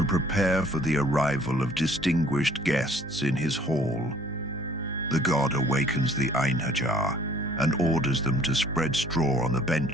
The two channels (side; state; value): both; normal; correlation 0.56